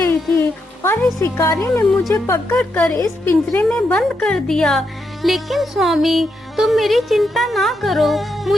थी और इस शिकारी ने मुझे पकड़कर इस पिंजरे में बंद कर दिया। लेकिन स्वामी, तुम मेरी चिंता ना करो।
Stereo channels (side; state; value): both; normal; correlation 0.82